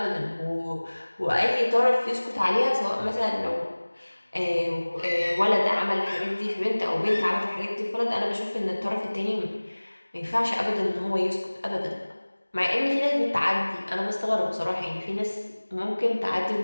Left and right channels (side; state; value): both; inverted; correlation -1.00